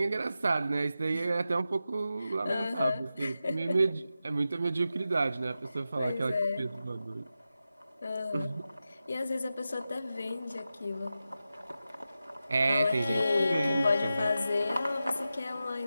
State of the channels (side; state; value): both; inverted; correlation -0.92